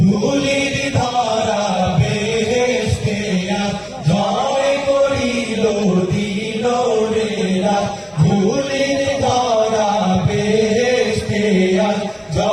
ধুলির ধারা বেহেশতে জয় করিল দিল রে রাত। ধুলির ধারা বেহেশতে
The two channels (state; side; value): identical; both; correlation 1.00